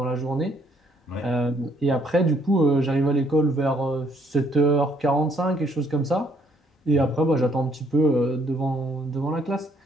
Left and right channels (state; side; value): normal; both; correlation 0.67